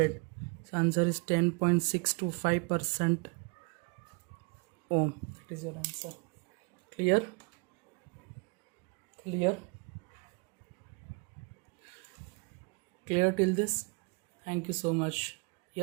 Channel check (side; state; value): left; quieter; 31.5 dB